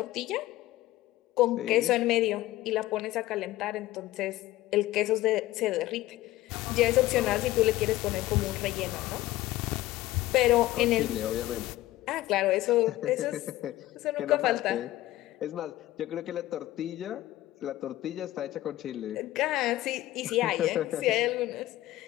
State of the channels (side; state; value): right; quieter; 16.2 dB